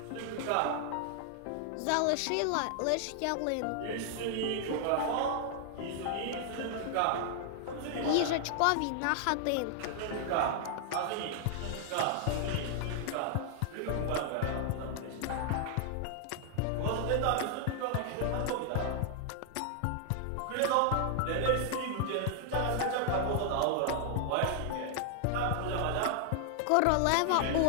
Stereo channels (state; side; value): different; both; correlation 0.00